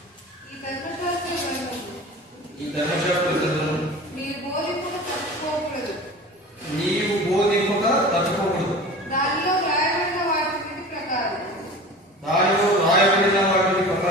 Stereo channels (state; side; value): normal; both; correlation 0.37